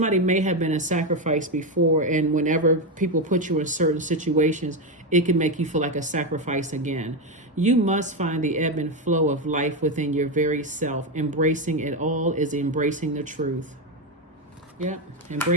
may have been a sacrifice before, and whenever people put you in certain situations, it can make you feel like a sacrifice again. You must find the ebb and flow of life within your very self. Embracing it all is embracing the truth. Yeah,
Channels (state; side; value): normal; both; correlation 0.09